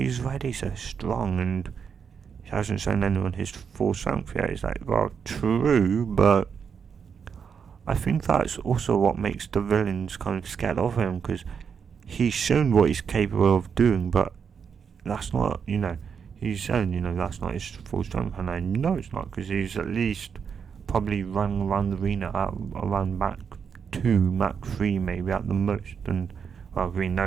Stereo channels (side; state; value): left; quieter; 6.7 dB